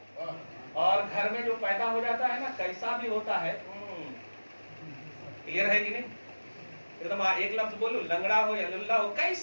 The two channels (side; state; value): both; inverted; correlation -1.00